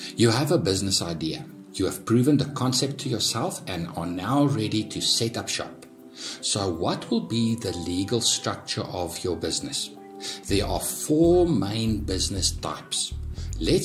You have a business idea. You have proven the concept to yourself and are now ready to set up shop. So what will be the legal structure of your business? There are 4 main business types.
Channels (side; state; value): both; identical; correlation 1.00